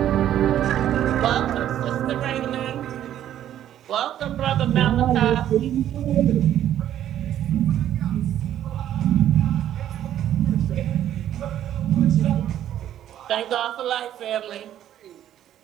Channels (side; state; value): left; quieter; 11.4 dB